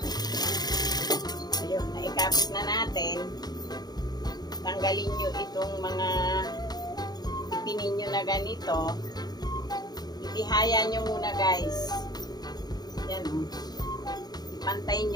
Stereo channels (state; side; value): late; right; 0.19 ms